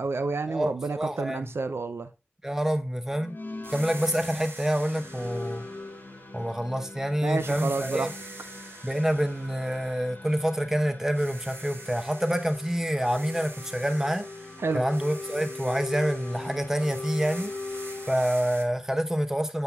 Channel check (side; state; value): both; normal; correlation 0.95